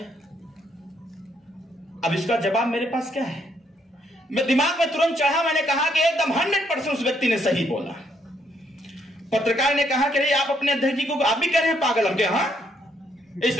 अब इसका जवाब मेरे पास क्या है? मैं दिमाग में तुरंत चढ़ा, मैंने कहा कि एकदम 100% उस व्यक्ति ने सही बोला। पत्रकार ने कहा कि आप अपने अध्यक्ष जी को आप भी कह रहे हैं पागल। हम क्या, हाँ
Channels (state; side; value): normal; both; correlation 0.72